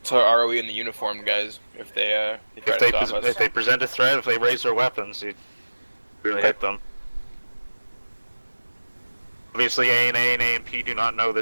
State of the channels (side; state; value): both; inverted; correlation -1.00